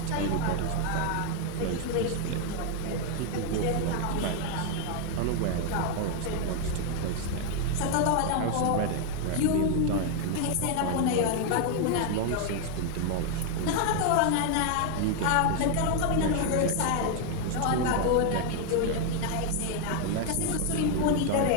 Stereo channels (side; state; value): both; different; correlation 0.00